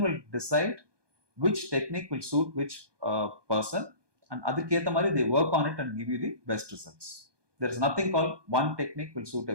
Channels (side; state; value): left; late; 1.2 ms